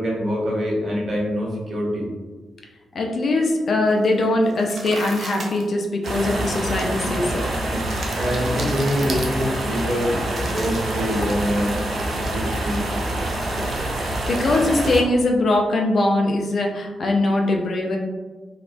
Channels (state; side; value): normal; both; correlation 0.84